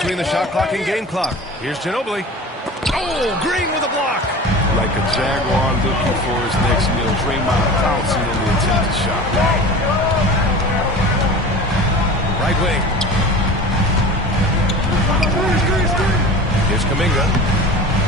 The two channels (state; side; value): normal; both; correlation 0.36